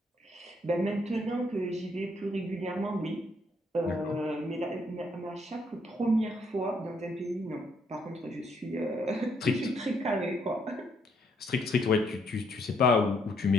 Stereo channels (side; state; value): both; normal; correlation 0.71